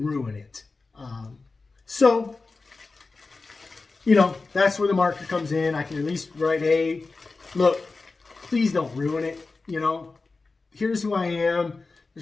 it. So, you know, that's where the marker comes in. I can at least write, hey, look, please don't ruin it. You know, here's who I am.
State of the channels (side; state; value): right; quieter; 3.8 dB